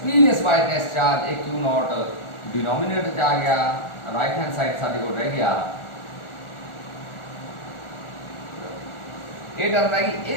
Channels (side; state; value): right; late; 1.4 ms